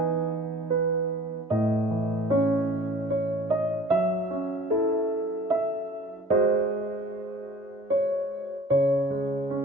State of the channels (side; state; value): both; normal; correlation 0.47